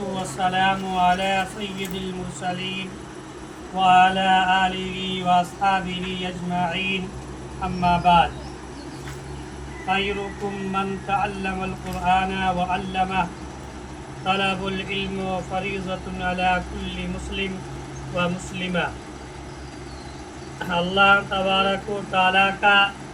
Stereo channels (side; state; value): both; identical; correlation 1.00